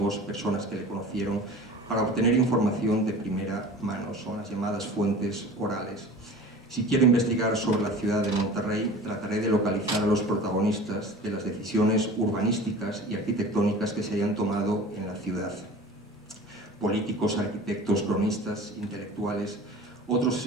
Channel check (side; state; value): both; normal; correlation 0.39